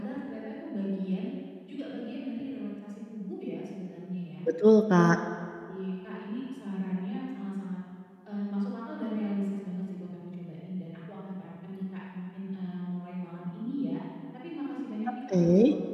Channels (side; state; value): both; identical; correlation 1.00